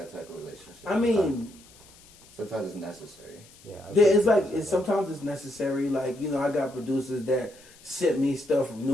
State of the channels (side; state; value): left; noise; hiss, 24 dB below the sound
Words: type of relationship. I mean, sometimes it's necessary. Yeah, yeah, it's like sometimes it's necessary. Like I got producers that sent me stuff from